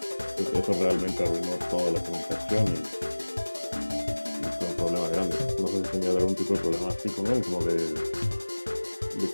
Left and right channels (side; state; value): both; inverted; correlation -1.00